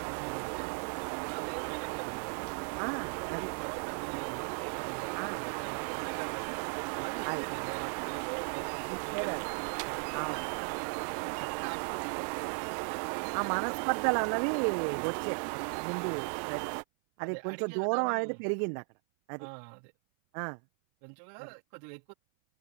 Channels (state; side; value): silent; left; 54 dB below the other